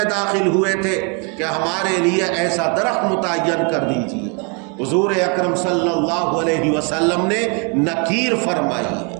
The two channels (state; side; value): quieter; left; 35.2 dB